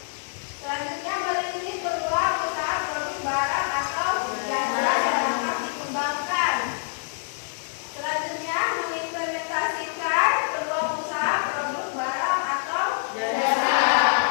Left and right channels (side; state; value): right; silent; digital silence